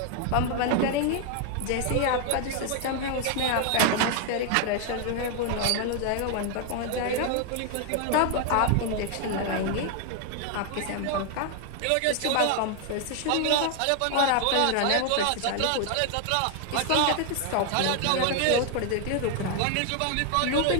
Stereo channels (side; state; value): both; different; correlation 0.01